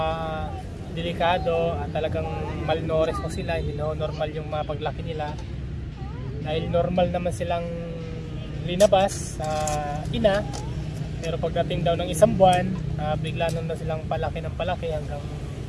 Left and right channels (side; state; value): both; identical; correlation 1.00